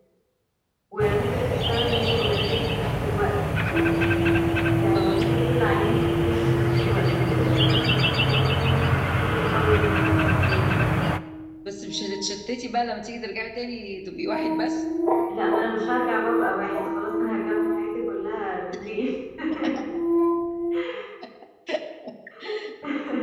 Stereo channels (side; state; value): both; identical; correlation 1.00